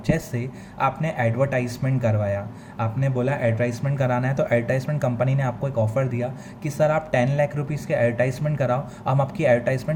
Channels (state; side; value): identical; both; correlation 1.00